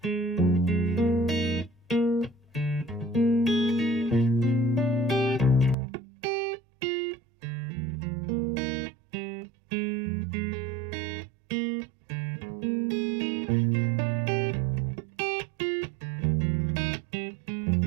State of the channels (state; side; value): drops out; left; at 5.8 s